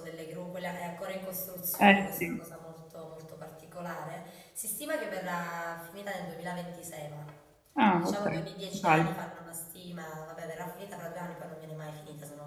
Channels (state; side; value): identical; both; correlation 1.00